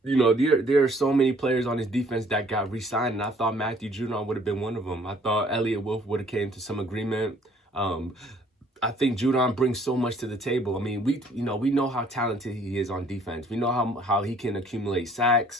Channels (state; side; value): normal; both; correlation 0.59